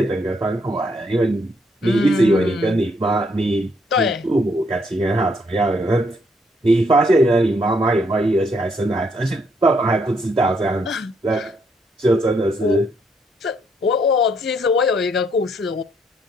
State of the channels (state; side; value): normal; both; correlation 0.72